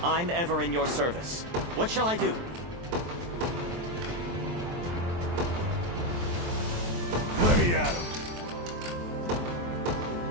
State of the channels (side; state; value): left; late; 23 ms